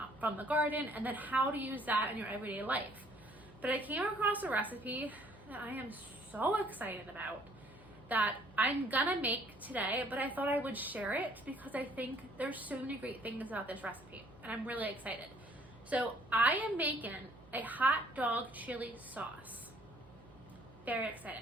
from the garden, and then how to use that in your everyday life. But I came across a recipe that I am so excited about that I'm gonna make today, but I thought I would share it because I think there's so many great things about this recipe and I'm really excited. So I am making a hot dog chili sauce. Very excited.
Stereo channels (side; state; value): right; noise; hum, 24 dB below the sound